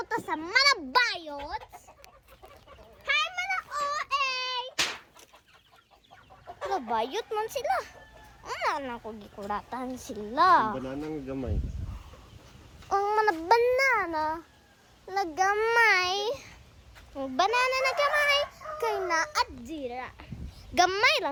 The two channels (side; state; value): both; identical; correlation 1.00